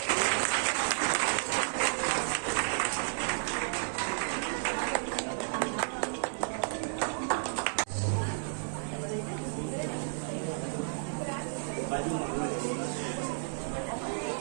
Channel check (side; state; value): left; silent; 56 dB below the other